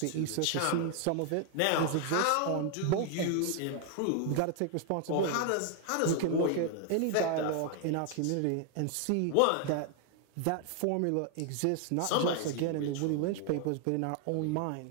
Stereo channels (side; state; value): both; different; correlation 0.00